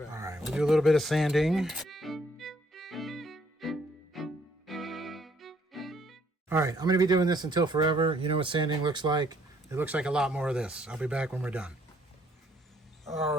All right, we'll do a little bit of sanding. All right, I'm going to be doing this until forever. You know what sanding looks like? It looks like a lot more of this. I'll be back when we're done. All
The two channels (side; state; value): both; normal; correlation 0.66